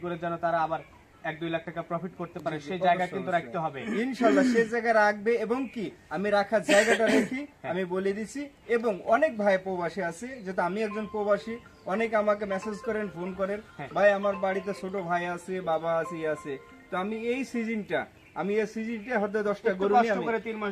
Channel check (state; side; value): identical; both; correlation 1.00